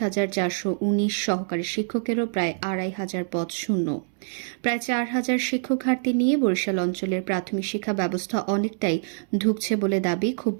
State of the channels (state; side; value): silent; left; 61 dB below the other